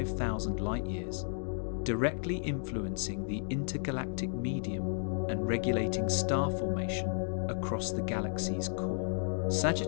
light-years, directly influencing the intergalactic medium and regulating star formation across the galaxy's core.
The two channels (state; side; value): silent; right; digital silence